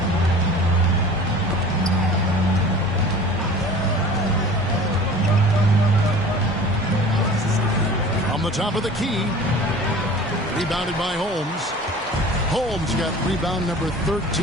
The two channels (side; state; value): both; normal; correlation 0.42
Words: From the top of the key. Rebounded by Holmes. Holmes got rebound number 13